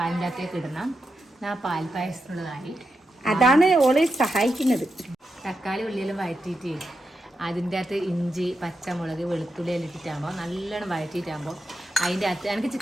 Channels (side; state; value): both; normal; correlation 0.87